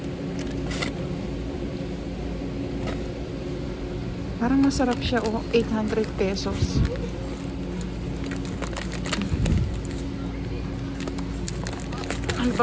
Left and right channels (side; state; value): both; identical; correlation 1.00